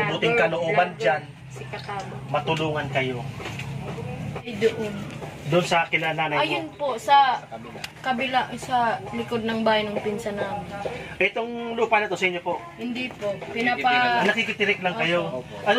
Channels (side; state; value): both; identical; correlation 1.00